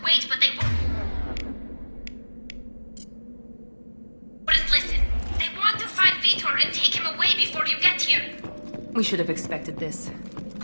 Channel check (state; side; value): inverted; both; correlation -1.00